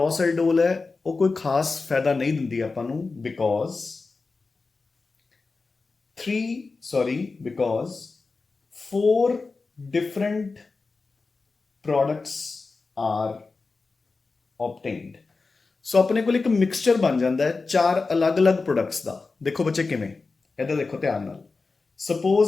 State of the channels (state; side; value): quieter; right; 4.0 dB